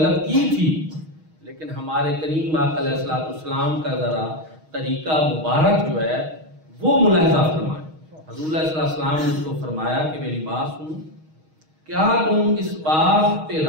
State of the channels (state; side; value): late; left; 6.4 ms